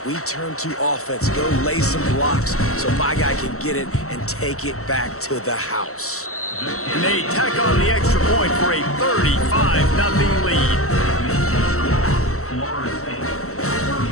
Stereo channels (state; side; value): late; right; 0.64 ms